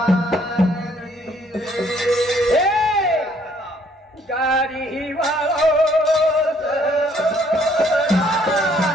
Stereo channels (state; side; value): normal; both; correlation 0.64